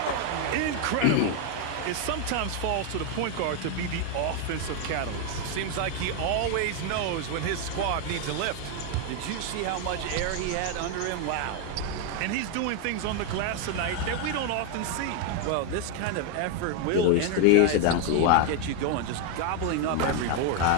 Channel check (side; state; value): both; different; correlation 0.01